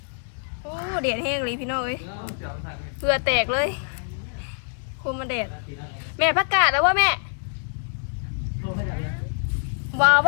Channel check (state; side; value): silent; right; digital silence